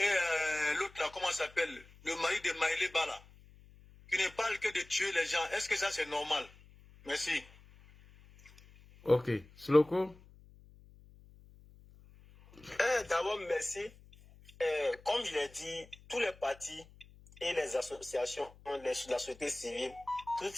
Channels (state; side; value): noise; left; hum, 23 dB below the sound